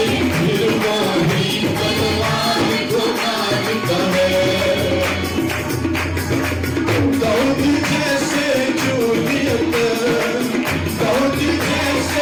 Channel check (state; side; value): identical; both; correlation 1.00